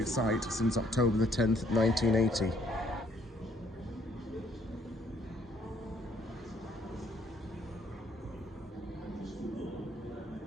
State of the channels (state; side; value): normal; both; correlation 0.64